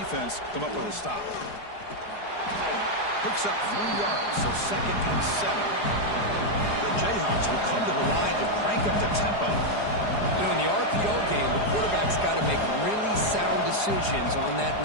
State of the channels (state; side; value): late; right; 4.8 ms